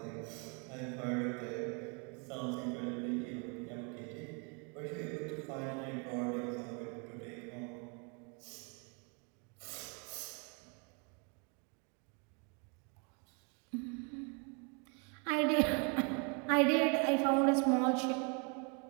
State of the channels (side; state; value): left; quieter; 35.6 dB